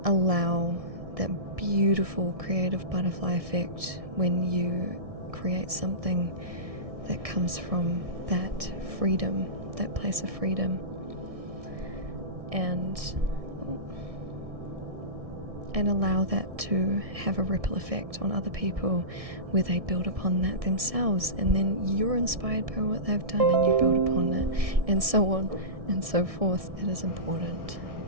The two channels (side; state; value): left; late; 1.6 ms